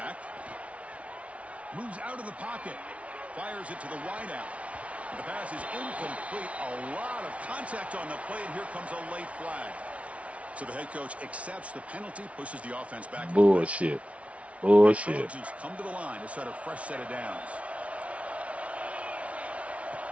Moves out of the pocket. Fires it to the wideout. The pass is incomplete. A lot of contact on the play, and here comes a late flag. So the head coach accepts the penalty, pushes the offense back. Bullshit. Bullshit. The Trojans come to the line to start a fresh set of downs.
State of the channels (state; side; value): late; left; 0.064 ms